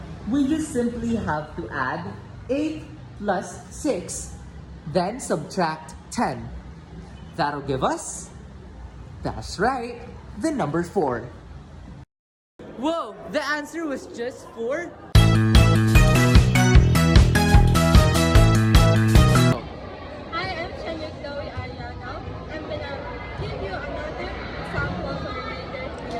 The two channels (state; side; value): identical; both; correlation 1.00